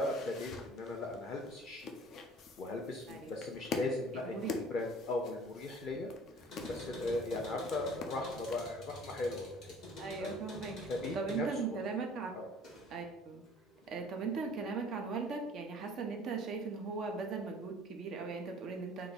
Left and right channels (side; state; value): both; normal; correlation 0.50